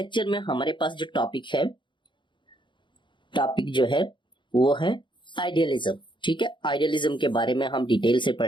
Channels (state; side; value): late; right; 0.23 ms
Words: में हमारे पास जो टॉपिक जो है वो है आइडियलिज्म। ठीक है, आइडियलिज्म के बारे में हम डिटेल से